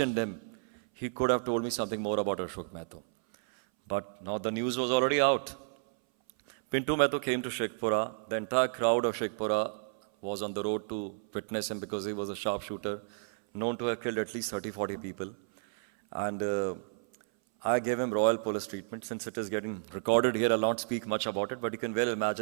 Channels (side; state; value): left; silent; 57 dB below the other